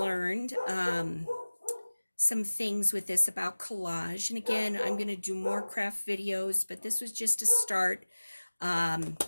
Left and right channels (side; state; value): both; inverted; correlation -1.00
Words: some things with this about collage. And again, I'm going to do more craft videos, but this was just a start.